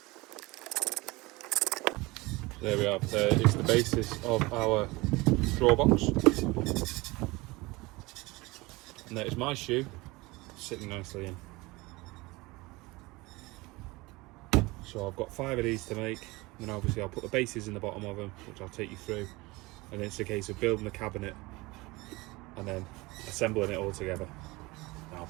There we are, there is the basis of our drawer box. And there's my shoe sitting nicely in. So I've got 5 of these to make, and then obviously I'll put the bases in the bottom of them, which I'll take you through. And then it's a case of building the cabinet and then assembling it all together. Now I'll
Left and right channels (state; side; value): quieter; left; 22.6 dB